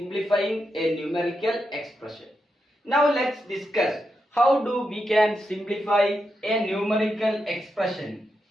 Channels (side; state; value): both; normal; correlation 0.85